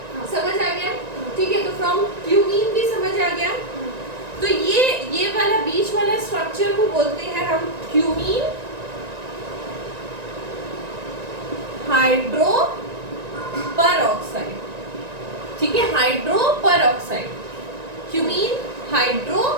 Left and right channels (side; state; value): left; late; 1.9 ms